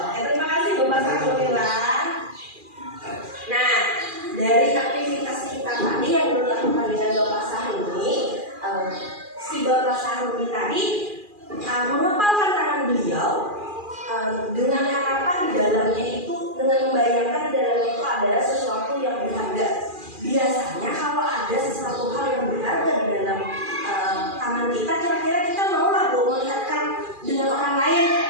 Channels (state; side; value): late; left; 2.4 ms